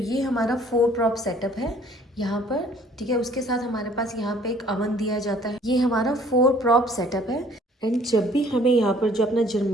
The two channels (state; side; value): normal; both; correlation 0.57